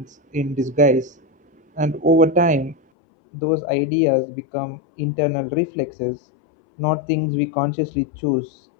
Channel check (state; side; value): drops out; right; at 2.8 s